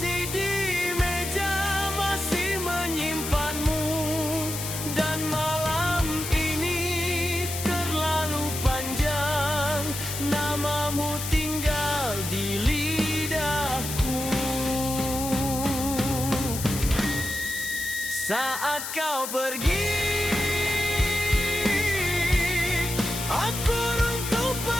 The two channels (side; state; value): left; noise; hiss, 6 dB below the sound